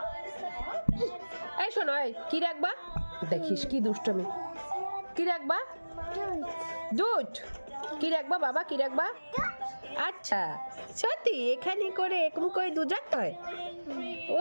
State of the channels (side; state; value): both; inverted; correlation -1.00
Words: এই শোনো, এই কি রাখবা? দেখিস কি দুষ্টমি। কি রাখবা? দুধ। কি রাখবা বাবা, কি রাখবা? আচ্ছা সত্যি এখানে করে এরকম করে দুধ রাখতে হয়?